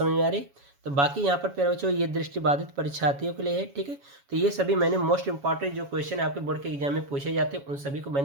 में आ रही। तो बाकी यहाँ पर प्यारे बच्चों ये दृष्टिबाधित परीक्षार्थियों के लिए है। ठीक है। तो ये सभी मैंने मोस्ट इंपॉर्टेंट जो क्वेश्चन आपके बोर्ड के एग्जाम में पूछे जाते हैं उन सभी को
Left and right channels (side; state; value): left; late; 7.2 ms